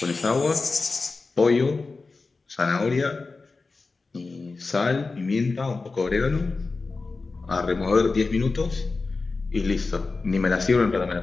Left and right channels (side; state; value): right; quieter; 3.9 dB